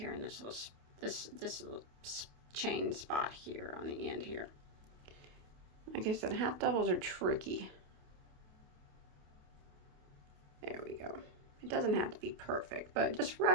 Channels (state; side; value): late; left; 28 ms